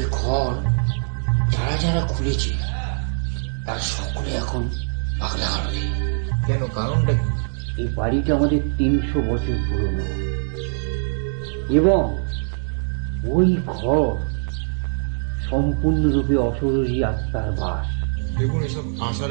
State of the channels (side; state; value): left; silent; digital silence